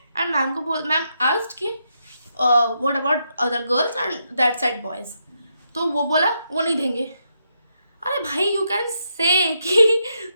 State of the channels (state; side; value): inverted; both; correlation -0.80